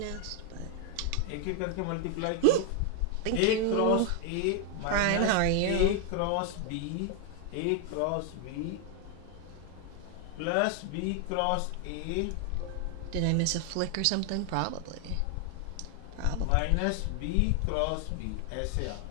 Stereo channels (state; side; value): different; both; correlation 0.00